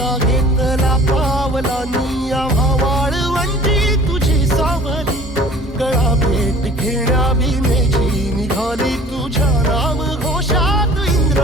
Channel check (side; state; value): both; normal; correlation 0.48